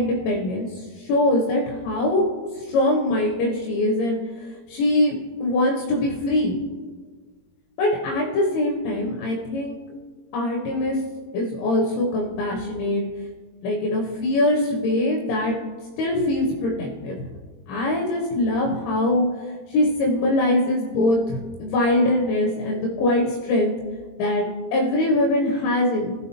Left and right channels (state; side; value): late; right; 22 ms